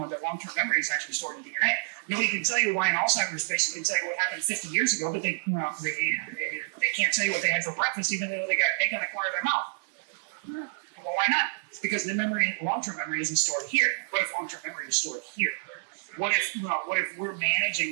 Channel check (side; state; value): left; silent; 59 dB below the other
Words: long-term memory is actually stored in DNA. Nobody can tell you why an Alzheimer's patient can tell you what happened 50 years ago, but they can't tell you what they had for breakfast, even though they got egg on the corner of their mouth. Well, why not? Because the long-term memory isn't stored here. What if long-term memory is stored here? What if we're